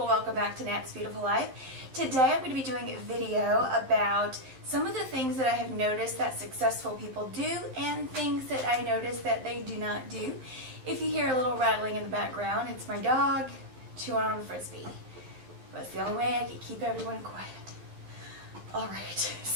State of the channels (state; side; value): late; left; 12 ms